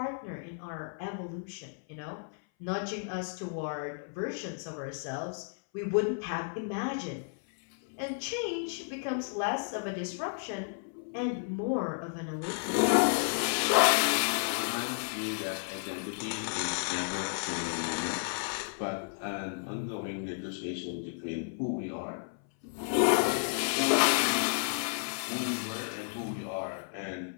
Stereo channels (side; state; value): right; silent; 56 dB below the other